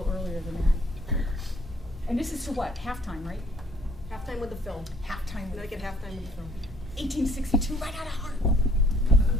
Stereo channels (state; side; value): normal; both; correlation 0.61